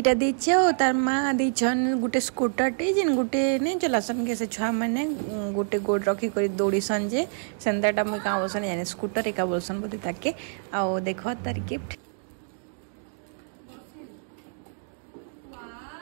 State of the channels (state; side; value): silent; left; digital silence